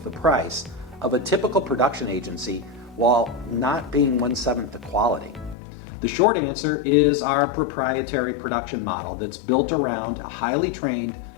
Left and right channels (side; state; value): right; drops out; at 5.6 s